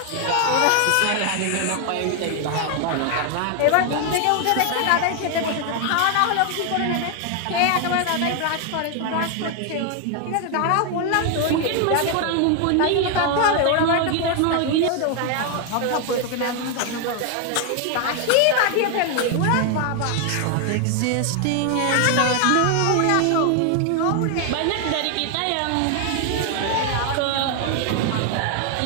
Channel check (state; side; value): different; both; correlation 0.00